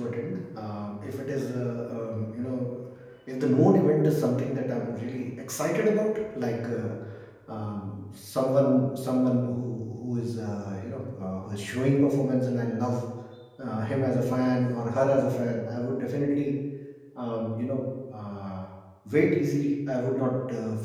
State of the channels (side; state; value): both; identical; correlation 1.00